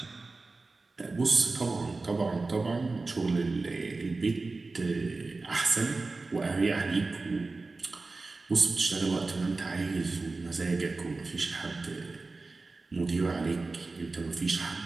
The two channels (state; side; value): quieter; left; 3.6 dB